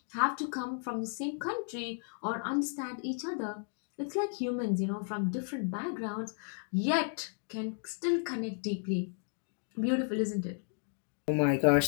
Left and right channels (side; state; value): right; silent; 55 dB below the other